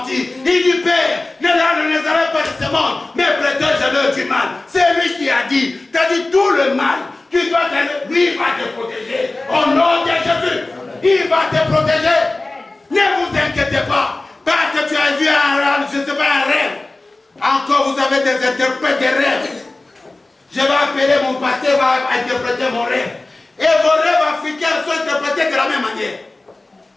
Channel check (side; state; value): right; quieter; 3.0 dB